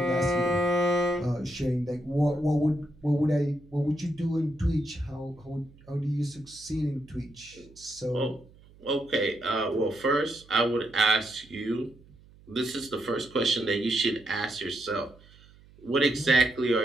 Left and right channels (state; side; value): noise; right; hum, 25 dB below the sound